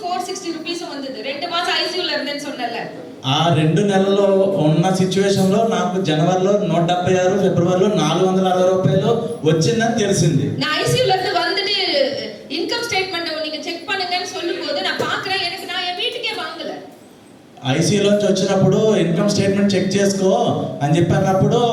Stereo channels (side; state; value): both; identical; correlation 1.00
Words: 460 రూపీస్ வந்தது. 2 மாசம் ஐசியூல இருந்தேன்னு சொன்னல. ఆ 2 నెలల్లో ఉన్న సిచువేషన్ లో నాకు జనవరిలో 176, ఫిబ్రవరిలో 460 రూపాయలు వచ్చిందని తెలిసింది. நான் ஐசியூல இருந்து வந்துட்டு இன்கம் ஸ்டேட்மென்ட் நீங்க செக் பண்ணுங்கன்னு சொல்லும்போது நான் பாக்குறேன் ఐసీయూలోంచి వచ్చినప్పుడు ఇన్కమ్ స్టేట్మెంట్ చెక్ చేసుకో అని చెప్పి అన్నప్పుడు